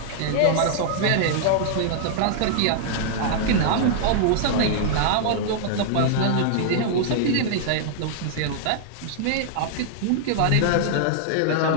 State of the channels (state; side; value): different; both; correlation -0.01